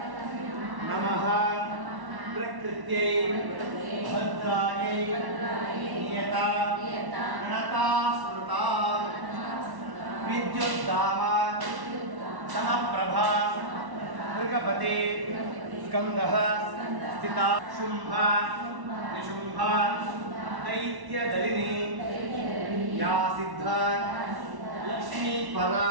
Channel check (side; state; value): left; late; 1.1 ms